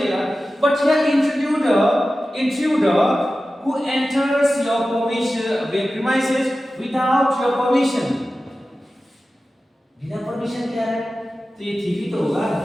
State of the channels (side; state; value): both; normal; correlation 0.94